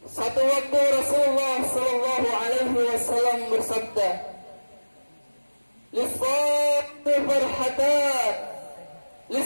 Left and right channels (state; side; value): inverted; both; correlation -1.00